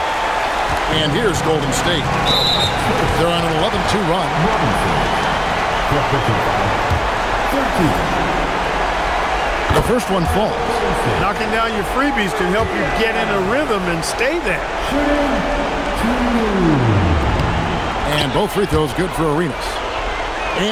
And here's Golden State. They're on an 11-2 run. The first one falls. Knocking down your freebies can help you get in a rhythm and stay there. And both free throws good for Arenas.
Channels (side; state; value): both; identical; correlation 1.00